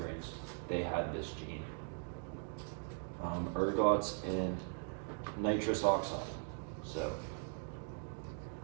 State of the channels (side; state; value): left; silent; 51 dB below the other